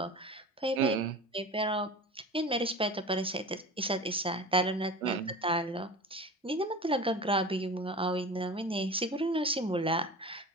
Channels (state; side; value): normal; both; correlation 0.33